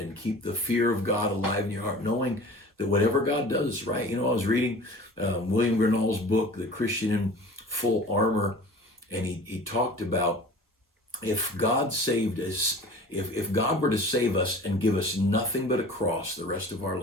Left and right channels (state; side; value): normal; both; correlation 0.42